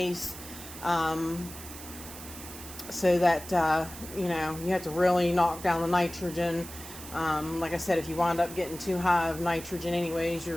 so that you have to really knock down the nitrogen. Like I said, if you wind up getting too high of nitrogen anyways,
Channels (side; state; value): right; noise; hiss, 13 dB below the sound